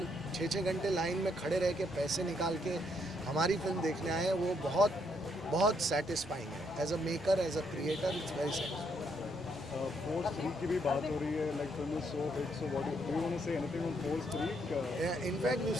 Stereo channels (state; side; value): normal; both; correlation 0.73